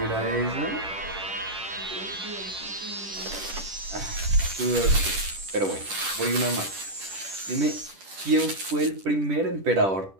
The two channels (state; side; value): late; left; 10 ms